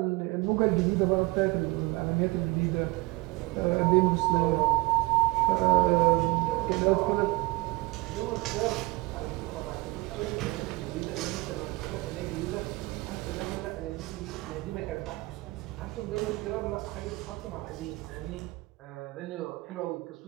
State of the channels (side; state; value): left; quieter; 22.8 dB